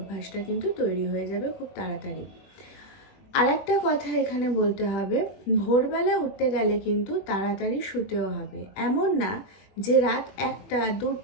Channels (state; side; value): late; right; 21 ms